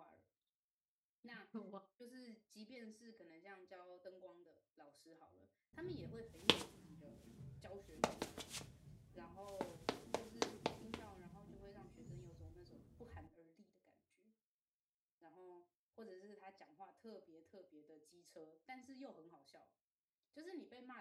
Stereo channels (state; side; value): identical; both; correlation 1.00